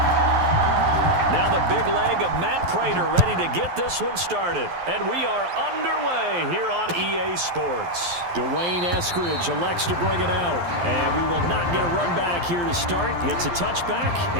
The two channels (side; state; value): left; late; 12 ms